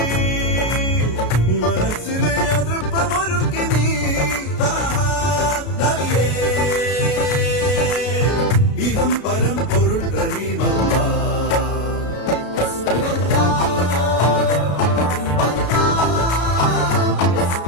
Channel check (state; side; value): late; right; 33 ms